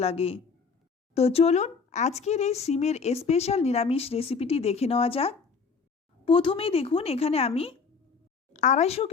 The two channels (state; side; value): quieter; right; 5.2 dB